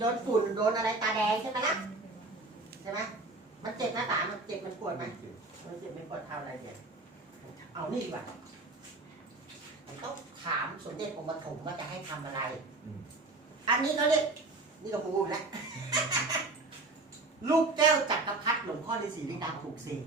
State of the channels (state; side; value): quieter; left; 3.2 dB